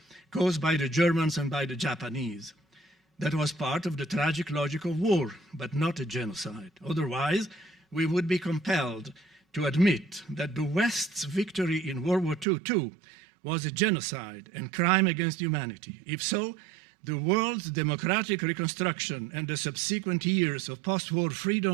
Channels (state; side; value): drops out; left; at 12.5 s